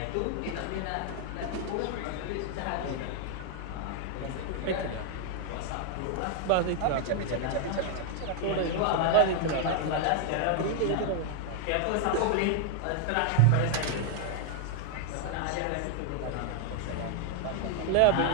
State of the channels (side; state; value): both; different; correlation 0.00